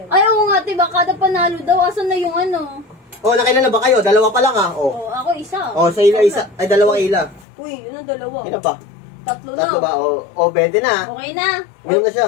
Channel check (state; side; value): drops out; right; at 7.5 s